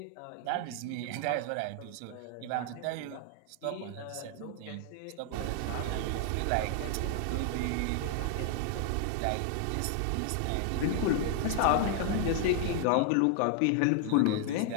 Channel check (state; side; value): different; both; correlation 0.00